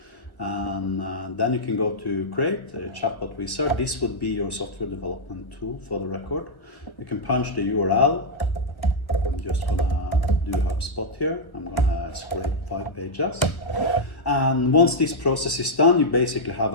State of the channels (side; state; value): right; late; 1.2 ms